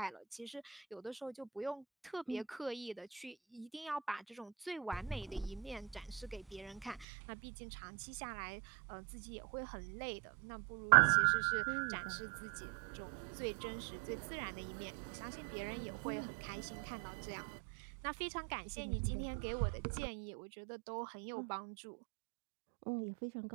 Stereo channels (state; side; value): drops out; left; at 7.1 s